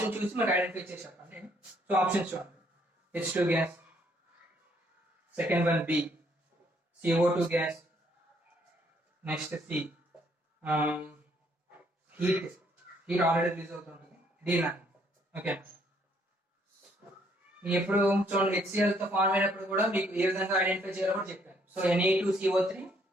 చూసి మనకి ఐడెంటిఫై చేసి చెప్పండి. సో ఆప్షన్స్ చూడండి, H2 gas, second one B CO2 gas. Next C heat already release అవుతుంటుంది D9. ఓకే, ఎప్పుడు చూడండి HCl తో ఫార్మ్ అయినప్పుడు కూడా మీకు ఏ విధంగా ఐడెంటిఫై చేయాలో కూడా చెప్పాను. సో Na2CO3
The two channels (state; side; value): normal; both; correlation 0.67